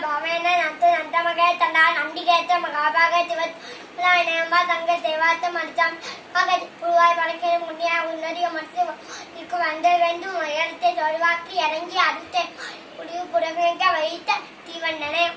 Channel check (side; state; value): both; identical; correlation 1.00